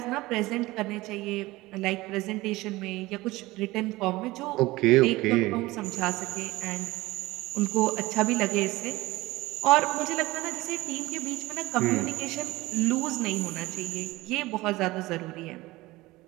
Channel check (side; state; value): left; quieter; 19.7 dB